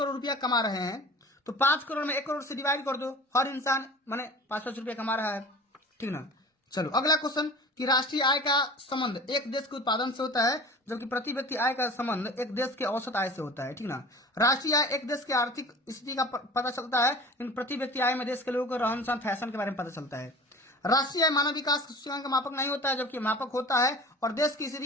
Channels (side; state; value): both; normal; correlation 0.40